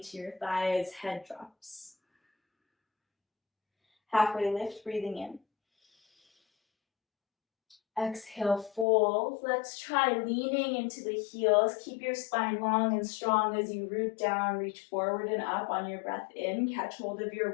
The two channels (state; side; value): drops out; right; at 8.8 s